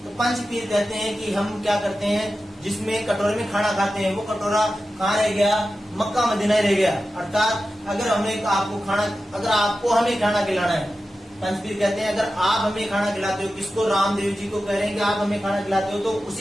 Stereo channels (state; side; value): normal; both; correlation 0.93